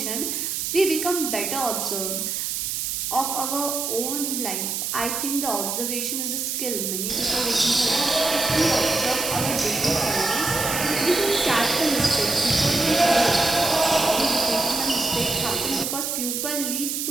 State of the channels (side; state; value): right; noise; hiss, 2 dB below the sound